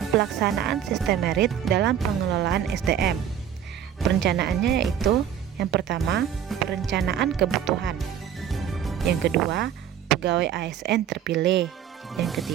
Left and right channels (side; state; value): left; quieter; 9.4 dB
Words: pelaksanaan sistem merit dalam pengelolaan SDM. Perencanaannya yaitu yang pertama, perencanaan kebutuhan. Yang kedua, pegawai ASN terpilih. Yang